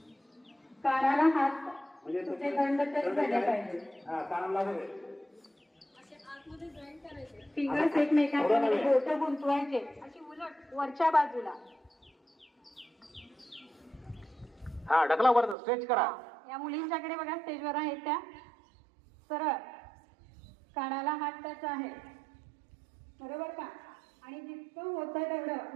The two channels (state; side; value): drops out; left; at 15.6 s